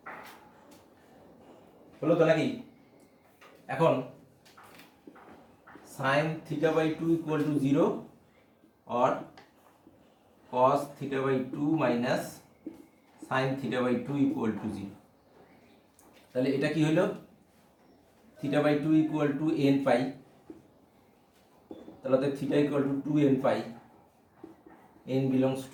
হলো তো নাকি? এখন sine theta by 2 equal to 0 और cos theta by 2 minus sine theta by 2 equal to 0। তাহলে এটা কি হলো? Theta by 2 equal to n pi, তাহলে theta equal to 2n pi, n belongs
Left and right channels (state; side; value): identical; both; correlation 1.00